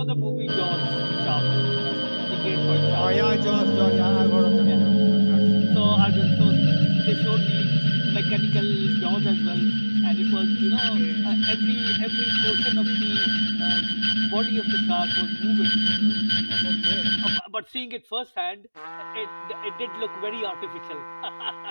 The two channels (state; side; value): inverted; both; correlation -1.00